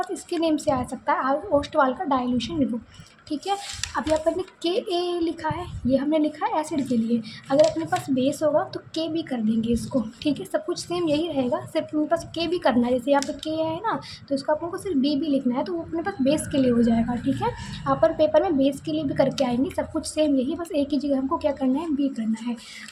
इसके नेम से आ सकता है ओस्टवाल का डाइल्यूशन निगो, ठीक है। अब यहाँ पर ने के ए लिखा है, ये हमने लिखा है एसिड के लिए। अगर अपने पास बेस होगा तो के भी कर देंगे इसको, ठीक है। सब कुछ सेम यही रहेगा, सिर्फ अपने पास के भी करना है। जैसे यहाँ पे के है ना, तो इसको अपन को सिर्फ बी भी लिखना है, तो वो अपने पास बेस के लिए हो जाएगा, ठीक है। अपन पेपर में बेस के लिए भी करके आएंगे, सब कुछ सेम यही, बस एक ही जगह हमको क्या करना है, बी करना है।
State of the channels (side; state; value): both; identical; correlation 1.00